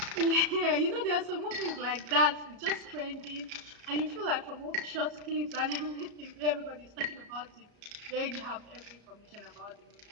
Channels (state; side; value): late; left; 34 ms